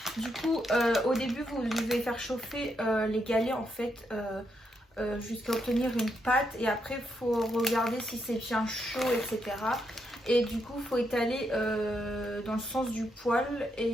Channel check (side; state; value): both; normal; correlation 0.80